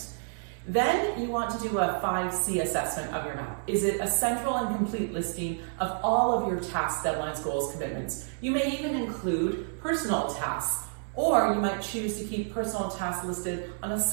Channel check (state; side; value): silent; left; 58 dB below the other